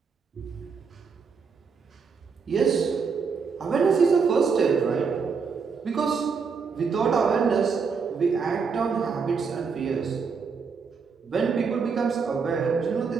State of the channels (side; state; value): left; quieter; 5.5 dB